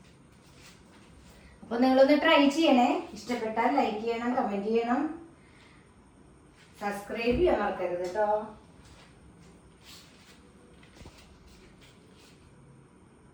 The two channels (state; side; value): identical; both; correlation 1.00